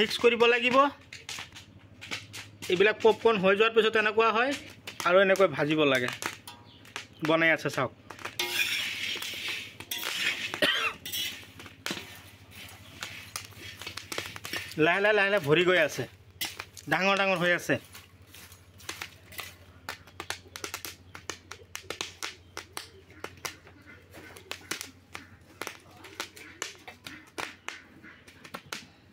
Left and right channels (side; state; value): both; identical; correlation 1.00